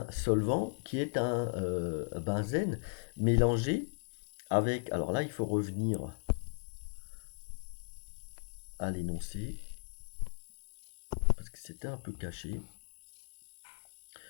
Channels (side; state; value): right; silent; 53 dB below the other